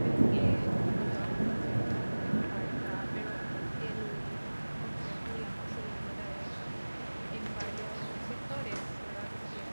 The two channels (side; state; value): both; inverted; correlation -1.00